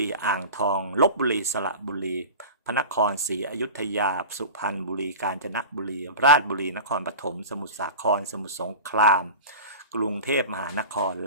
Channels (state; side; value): inverted; both; correlation -0.33